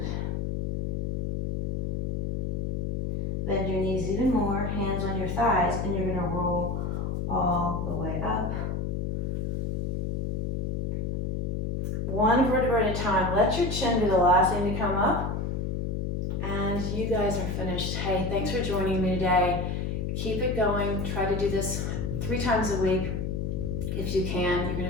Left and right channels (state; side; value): noise; left; hum, 1 dB below the sound